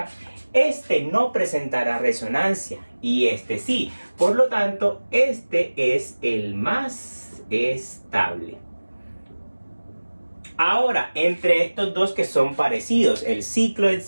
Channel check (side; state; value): both; inverted; correlation -1.00